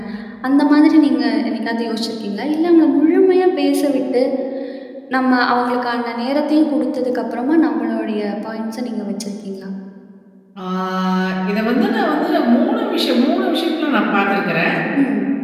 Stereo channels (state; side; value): identical; both; correlation 1.00